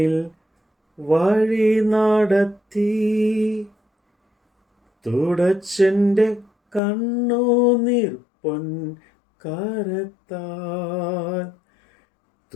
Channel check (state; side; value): drops out; right; at 6.8 s